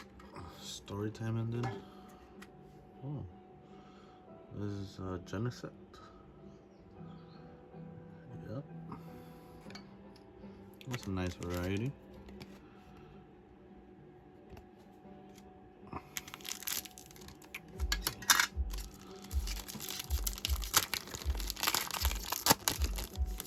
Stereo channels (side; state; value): both; identical; correlation 1.00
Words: Story time ended. Oh, this is Genesect. Yep, that's a nice variety.